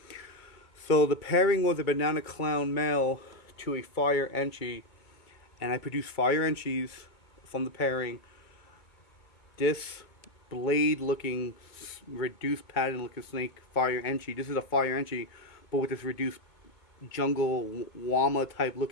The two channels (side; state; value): right; late; 2.2 ms